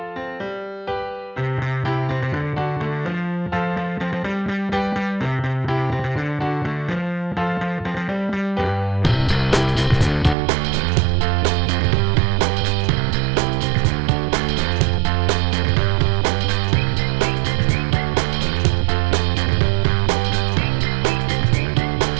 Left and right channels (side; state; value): left; drops out; at 10.4 s